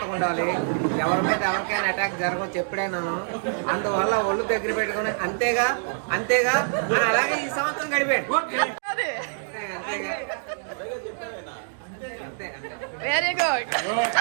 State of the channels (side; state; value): left; silent; digital silence